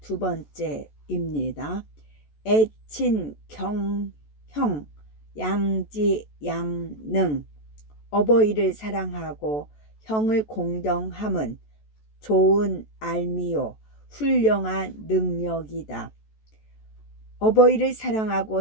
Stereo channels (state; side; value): late; right; 14 ms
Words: 두 번째입니다. 애친 경형 양지 양능. 어버이를 사랑하고 형을 공경함은 좋은 알미요 훌륭한 능력이다. 어버이를